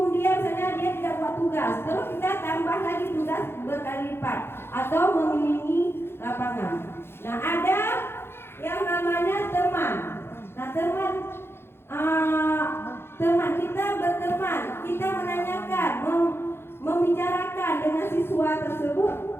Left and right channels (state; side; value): late; right; 0.11 ms